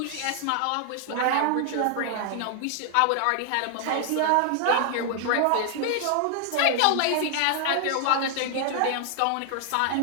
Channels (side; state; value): both; different; correlation 0.00